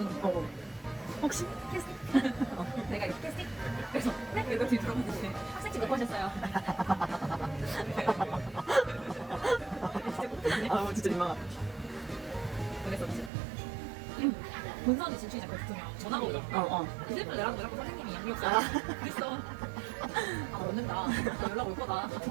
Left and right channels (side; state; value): left; drops out; at 13.3 s